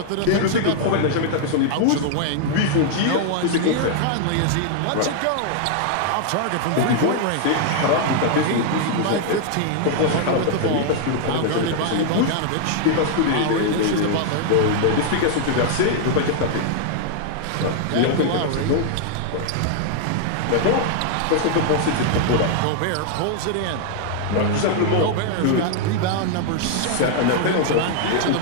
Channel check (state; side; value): different; both; correlation 0.00